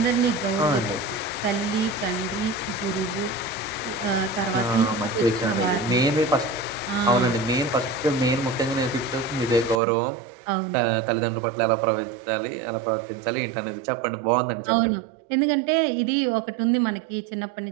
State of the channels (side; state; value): left; drops out; at 9.8 s